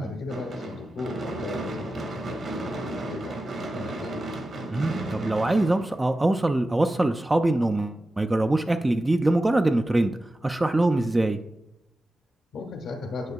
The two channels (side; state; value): both; normal; correlation 0.93